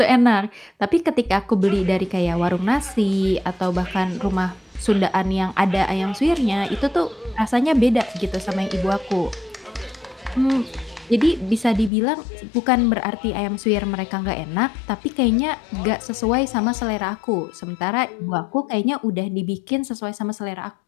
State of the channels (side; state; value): right; drops out; at 11.9 s